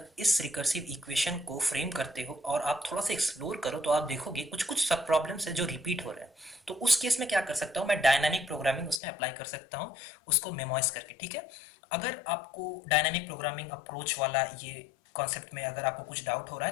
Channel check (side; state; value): right; drops out; at 9.0 s